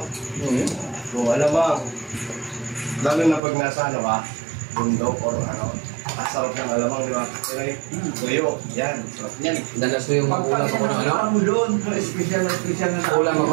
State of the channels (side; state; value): left; drops out; at 3.4 s